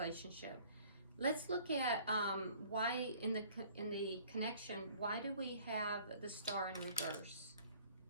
Let's look at why in the connection, why do we have the Star in reverse?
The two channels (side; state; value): both; inverted; correlation -0.53